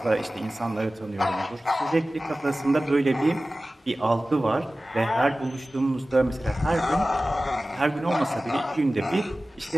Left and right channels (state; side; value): normal; both; correlation 0.96